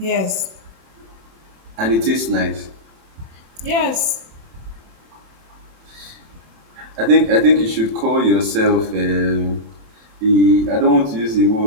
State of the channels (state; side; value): late; left; 27 ms